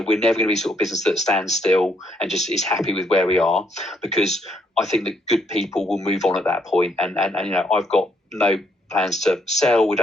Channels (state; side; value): normal; both; correlation 0.72